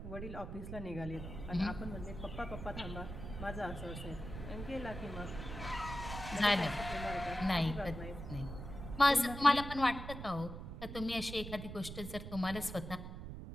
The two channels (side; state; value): right; noise; rumble, 8 dB below the sound